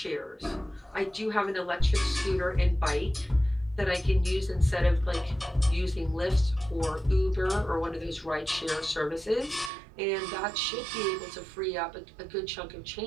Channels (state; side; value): drops out; left; at 9.7 s